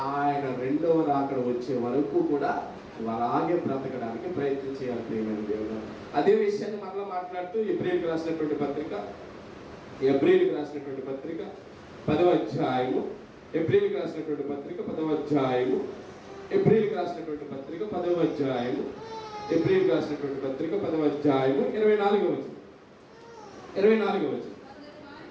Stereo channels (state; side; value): identical; both; correlation 1.00